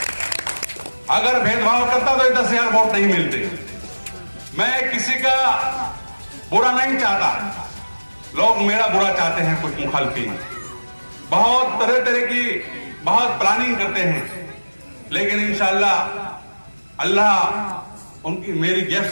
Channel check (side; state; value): both; inverted; correlation -1.00